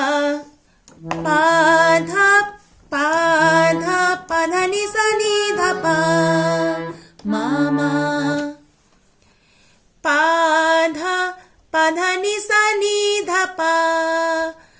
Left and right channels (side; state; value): both; identical; correlation 1.00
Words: পাধা পাধা পাধা নিসা নি ধাপা মামা, পাধা পাধা নিসা নি ধাপা